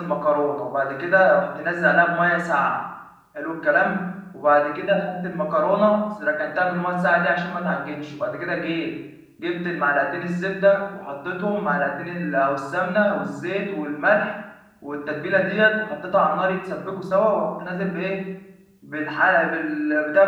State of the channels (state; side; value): identical; both; correlation 1.00